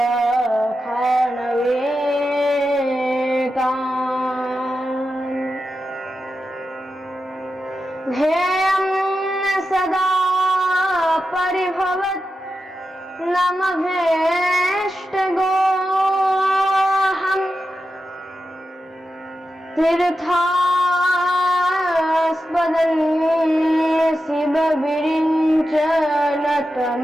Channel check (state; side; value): normal; both; correlation 0.90